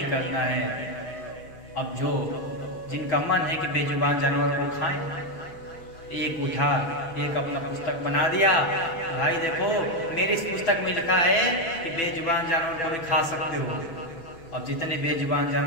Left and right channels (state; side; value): late; right; 6.0 ms